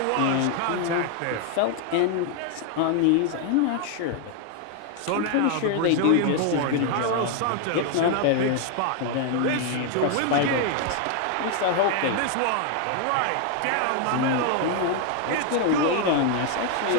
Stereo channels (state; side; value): different; both; correlation 0.00